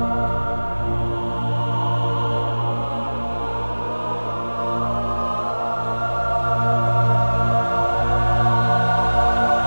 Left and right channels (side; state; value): both; inverted; correlation -1.00